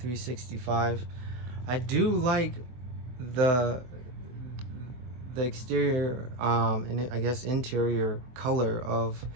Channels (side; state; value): left; late; 23 ms